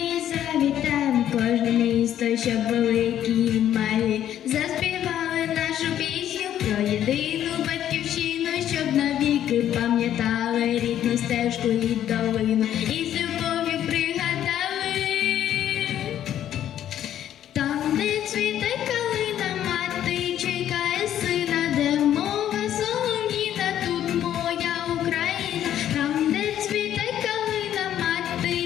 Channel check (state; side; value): quieter; right; 11.0 dB